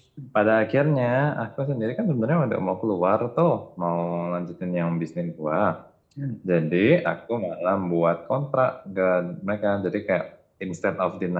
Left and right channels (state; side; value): identical; both; correlation 1.00